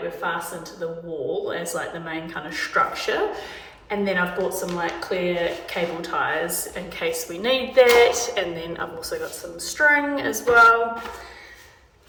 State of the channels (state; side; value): identical; both; correlation 1.00